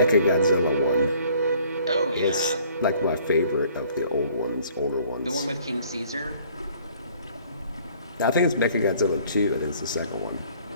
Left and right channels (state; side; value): inverted; both; correlation -0.56